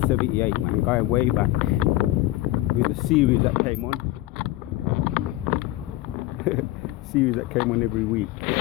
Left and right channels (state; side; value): quieter; right; 16.7 dB